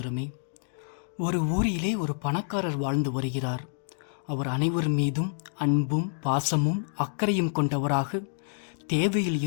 ஒரு ஊரிலே ஒரு பணக்காரர் வாழ்ந்து வருகிறார். அவர் அனைவர் மீதும் அன்பும் பாசமும் அக்கறையும் கொண்டவராக தேவையில்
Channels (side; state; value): right; silent; digital silence